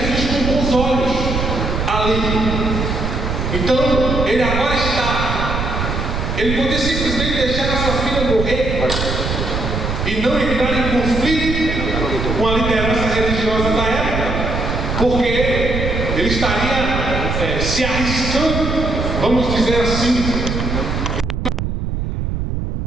com bons olhos ali. Então, ele agora ele podia simplesmente deixar a sua filha morrer e não entrar em conflito com a liderança religiosa da época, porque ele estaria se arriscando, vamos dizer assim,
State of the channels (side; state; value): right; noise; rumble, 2 dB below the sound